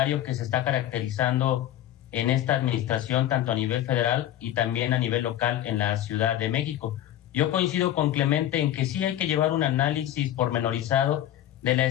que se está caracterizando en esta administración, tanto a nivel federal y también a nivel local en la Ciudad de México. Yo coincido con Clemente en que sí hay que llevar un análisis pormenorizado de la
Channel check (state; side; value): quieter; right; 12.4 dB